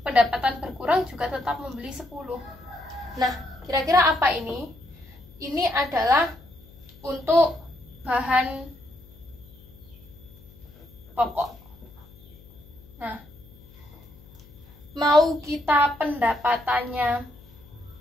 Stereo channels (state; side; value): noise; left; hum, 23 dB below the sound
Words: pendapatan berkurang juga tetap membeli 10. Nah, kira-kira apa ini? Ini adalah untuk bahan pokok. Nah, mau kita pendapatannya